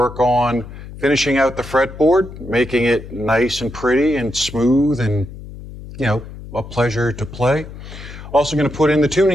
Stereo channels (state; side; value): noise; left; hum, 14 dB below the sound